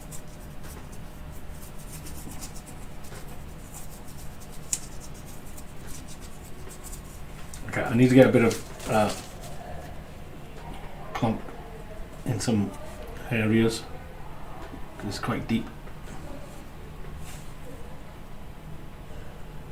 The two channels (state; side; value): identical; both; correlation 1.00